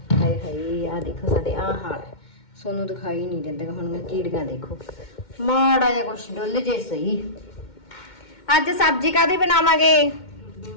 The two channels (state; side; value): late; right; 2.2 ms